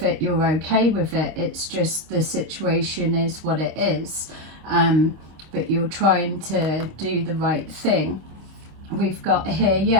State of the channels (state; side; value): late; left; 26 ms